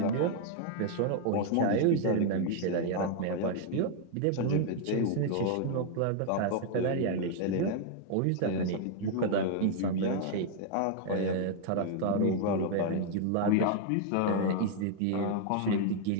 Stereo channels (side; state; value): both; different; correlation 0.00